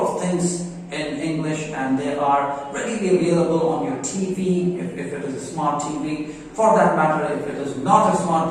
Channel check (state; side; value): identical; both; correlation 1.00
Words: of things in English, and they are readily available on your TV if it is a smart TV. For that matter, if it is not a